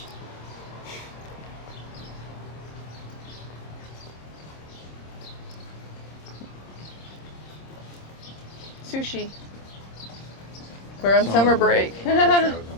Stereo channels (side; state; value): right; late; 26 ms